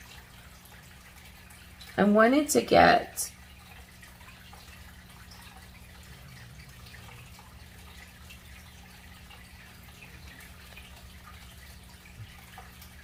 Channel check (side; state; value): both; identical; correlation 1.00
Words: I wanted to get